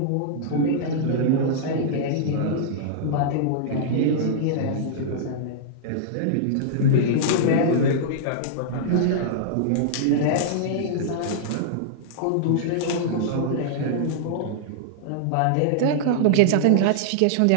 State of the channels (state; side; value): different; both; correlation -0.02